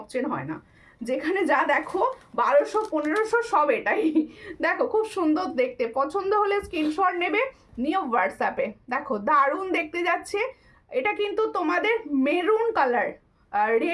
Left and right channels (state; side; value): identical; both; correlation 1.00